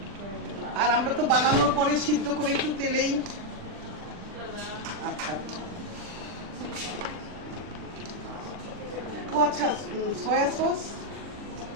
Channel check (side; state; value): left; late; 40 ms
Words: আর আমরা তো বানানোর পরে সিদ্ধ করে একটু তেলেই। আচ্ছা ও আচ্ছা, সয়া সস